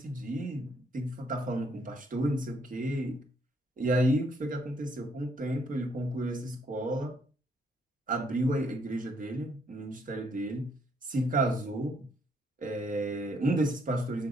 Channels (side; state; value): both; normal; correlation 0.70